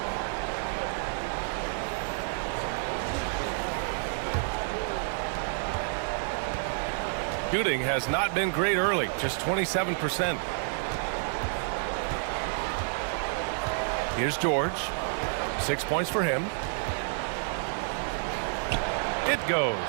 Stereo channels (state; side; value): silent; left; 58 dB below the other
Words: Shooting has not been great early, just 27%. Here's George. 6 points for him. It goes.